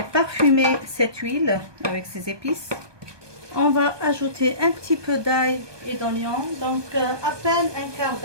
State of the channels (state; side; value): late; left; 1.2 ms